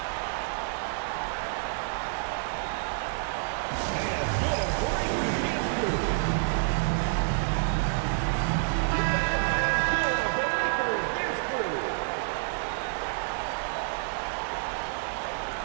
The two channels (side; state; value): left; silent; 59 dB below the other